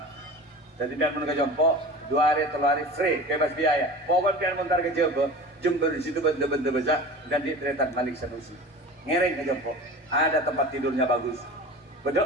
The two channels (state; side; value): normal; both; correlation 0.36